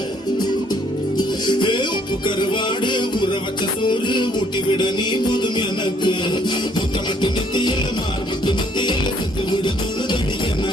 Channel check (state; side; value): normal; both; correlation 0.63